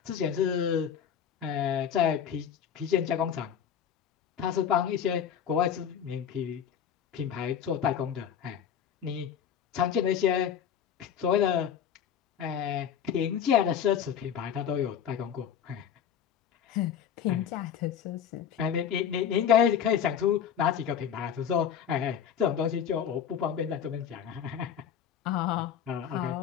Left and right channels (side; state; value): right; quieter; 8.5 dB